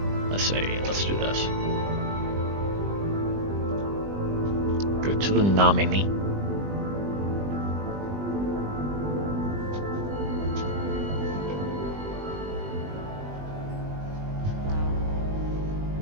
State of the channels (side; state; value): left; late; 20 ms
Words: Let's see. Let's do this. Go to the nominee.